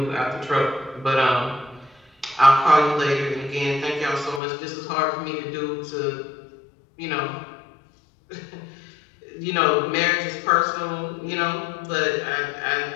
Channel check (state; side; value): drops out; right; at 4.4 s